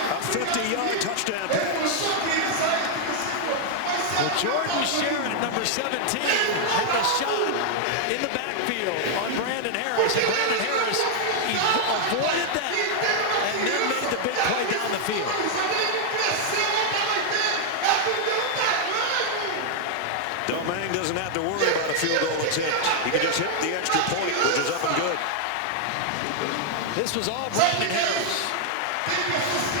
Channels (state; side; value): different; both; correlation -0.01